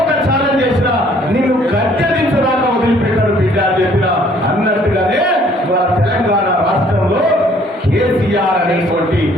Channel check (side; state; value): both; normal; correlation 0.60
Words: ఒక ఛాలెంజ్ చేసినా నిన్ను గద్దెదించదాకా వదిలిపెట్టారు బిడ్డ అని చెప్పిన అన్నట్టుగానే మన తెలంగాణ రాష్ట్రంలో కేసీఆర్ అనేటువంటి